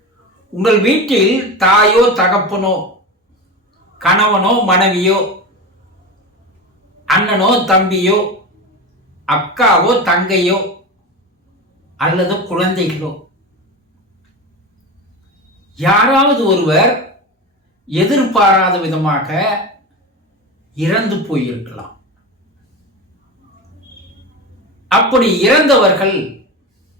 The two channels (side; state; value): both; normal; correlation 0.25